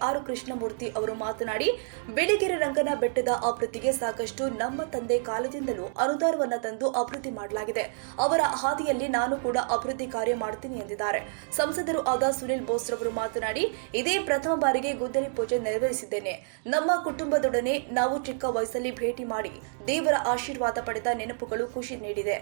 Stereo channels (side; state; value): left; silent; digital silence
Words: ಕೃಷ್ಣಮೂರ್ತಿ ಅವರು ಮಾತನಾಡಿ, ಬಿಳಿಗಿರಿ ರಂಗನ ಬೆಟ್ಟದ ಅಭಿವೃದ್ಧಿಗೆ ಸಾಕಷ್ಟು ನಮ್ಮ ತಂದೆ ಕಾಲದಿಂದಲೂ ಅನುದಾನವನ್ನು ತಂದು ಅಭಿವೃದ್ಧಿ ಮಾಡಲಾಗಿದೆ. ಅವರ ಹಾದಿಯಲ್ಲಿ ನಾನು ಕೂಡ ಅಭಿವೃದ್ಧಿ ಕಾರ್ಯ ಮಾಡುತ್ತೀನಿ ಎಂದಿದ್ದಾರೆ. ಸಂಸದರು ಆದ ಸುನಿಲ್ ಬೋಸ್ ರವರು ಮಾತನಾಡಿ, ಇದೇ ಪ್ರಥಮ ಬಾರಿಗೆ ಗುದ್ದಲಿ ಪೂಜೆ ನೆರವೇರಿಸಿದ್ದೇನೆ. ನಮ್ಮ ಕುಟುಂಬದೊಡನೆ ನಾವು ಚಿಕ್ಕ ವಯಸ್ಸಲ್ಲಿ ಭೇಟಿ ಮಾಡಿ ದೇವರ ಆಶೀರ್ವಾದ ಪಡೆದ ನೆನಪುಗಳು ಖುಷಿ ನೀಡಿದೆ.